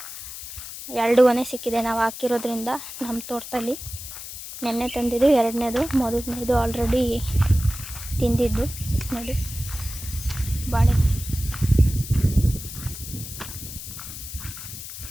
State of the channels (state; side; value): noise; left; hiss, 10 dB below the sound